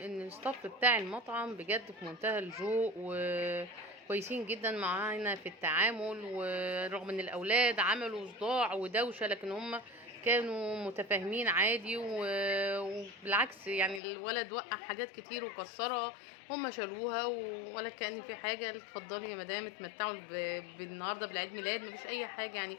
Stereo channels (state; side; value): drops out; right; at 14.0 s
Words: الستاف بتاع المطعم بجد في منتهى الذوق وكويسين جدا معانا في التعامل. ورغم ان الاولاد عملوا صداع ودوشة، لكن هم كانوا متفاهمين عادي. وبالعكس يعني الولد وقع حاجات كتير وكسرها، هم شالوها ولا كأن في حاجة. اتفضلي يا مدام اتمتعوا بالنهارده بالعيد ميلاد، مفيش اي حاجة يعني.